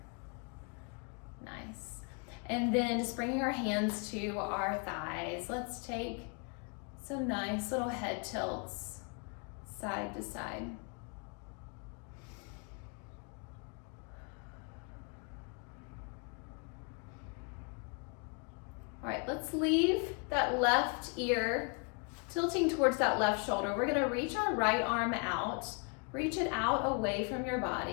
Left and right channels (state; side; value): quieter; right; 37.0 dB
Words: Nice. And then just bringing our hands to our thighs. Let's take some nice little head tilts side to side. All right, let's leave that left ear tilting towards that left shoulder. We're gonna reach our right arm out. Reach it out away from your